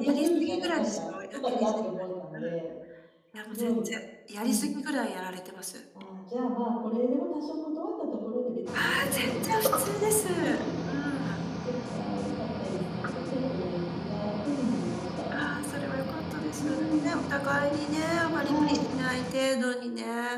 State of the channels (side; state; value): both; identical; correlation 1.00